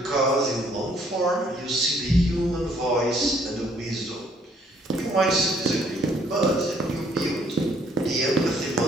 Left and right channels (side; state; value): both; normal; correlation 0.64